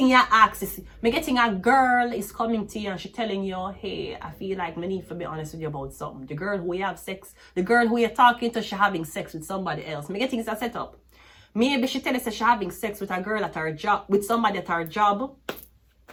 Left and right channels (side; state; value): both; identical; correlation 1.00